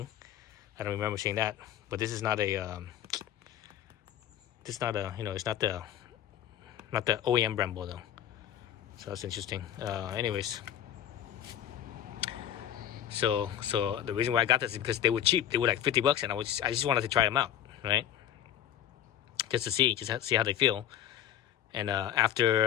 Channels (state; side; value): quieter; right; 10.8 dB